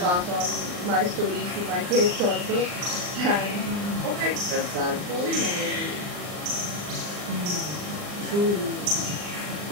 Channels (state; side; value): late; left; 39 ms